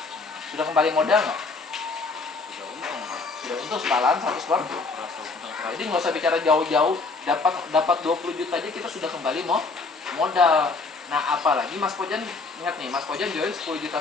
Sudah kembali modal nggak? Sudah untung. Sudah untung setalan 100%. Jadi nggak usah bicara jauh-jauh. Dapat 20 juta aja kita sudah kembali modal. Nah, apalagi Mas Pojan ingat nih, Mas Pojan join 10 juta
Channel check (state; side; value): quieter; right; 4.0 dB